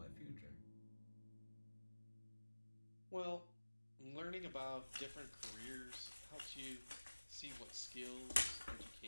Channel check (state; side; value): inverted; both; correlation -1.00